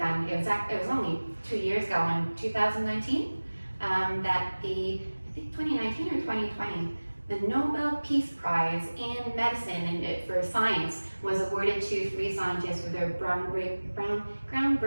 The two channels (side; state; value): both; inverted; correlation -1.00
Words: It was only 2 years ago in 2019 that I think 2019 or 2020, the Nobel Peace Prize in medicine and for science was awarded to 3 scientists for their